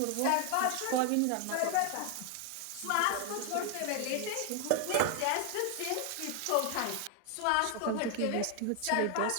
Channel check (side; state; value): both; different; correlation 0.00